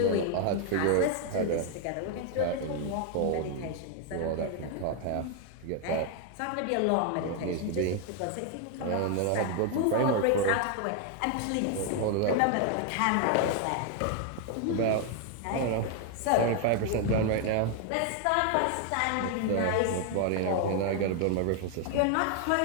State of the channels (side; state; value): both; different; correlation 0.01